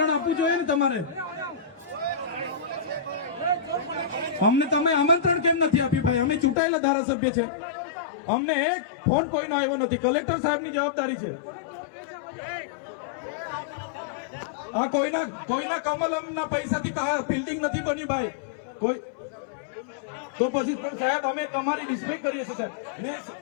આપવું જોઈએ ને તમારે. અમને તમે આમંત્રણ કેમ નથી આપ્યું ભાઈ? અમે ચૂંટાયેલા ધારાસભ્ય છે, અમને એક ફોન કોઈનો આવ્યો નથી. કલેક્ટર સાહેબની જવાબદારી છે. આ કોઈના કમલમના પૈસાથી બિલ્ડિંગ નથી બની ભાઈ. કોઈ તો પછી પણ સાહેબ, અમે તમારી રિસ્પેક્ટ કરીએ છીએ સાહેબ, ને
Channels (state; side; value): drops out; right; at 6.6 s